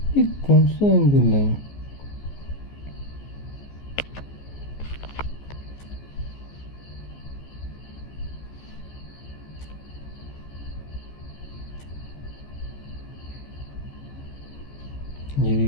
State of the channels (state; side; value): late; right; 14 ms